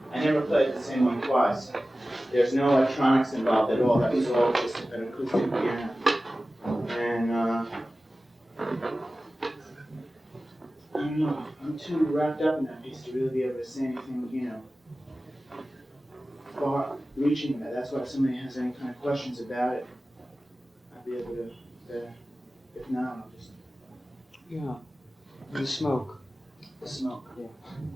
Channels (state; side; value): normal; both; correlation 0.96